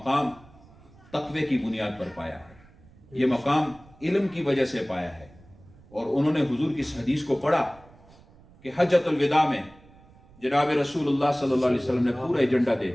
تقوی کی بنیاد پر پایا ہے، یہ مقام علم کی وجہ سے پایا ہے، اور انہوں نے حضور کی اس حدیث کو پڑھا کہ حجۃ الوداع میں جناب رسول اللہ صلی اللہ علیہ وسلم نے پورا ایجنڈا دے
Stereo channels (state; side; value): noise; right; rumble, 25 dB below the sound